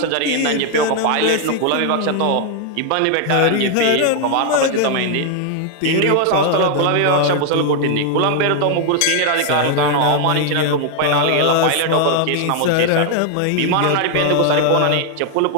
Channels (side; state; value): both; different; correlation 0.00